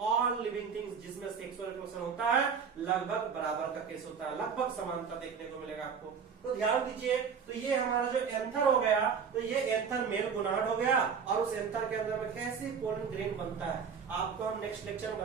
ऑल लिविंग थिंग्स जिसमें सेक्सुअल रिप्रोडक्शन होता है लगभग बराबर का केस होता है, लगभग समानता देखने को मिलेगा आपको। तो ध्यान दीजिए, तो ये हमारा जो एंथर हो गया, तो ये एंथर मेल गोनाड हो गया। और उस एंथर के अंदर में कैसे पोलन ग्रेन बनता है आपको हम नेक्स्ट लेक्चर में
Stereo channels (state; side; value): quieter; left; 6.4 dB